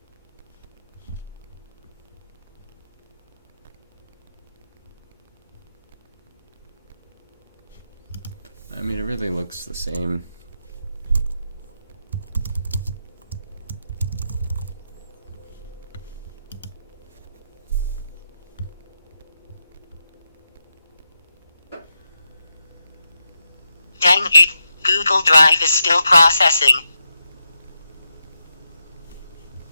I mean, it really looks the same. Dang it, Google Drive is still processing.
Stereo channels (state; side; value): inverted; both; correlation -0.86